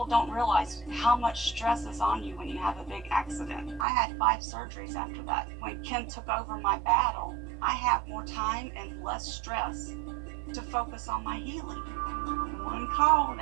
don't realize how much stress is on you when you have a big accident. I had 5 surgeries after that. When Ken took over my battle, I have more time and less stress to focus on my healing. One call,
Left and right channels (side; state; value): left; drops out; at 3.9 s